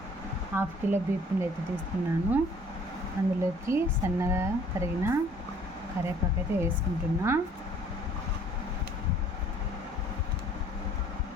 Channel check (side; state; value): both; normal; correlation 0.56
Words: 1/2 కిలో బియ్యం పిండి అయితే తీసుకున్నాను. అందులోకి సన్నగా తరిగిన కరివేపాకు అయితే వేసుకుంటున్నా.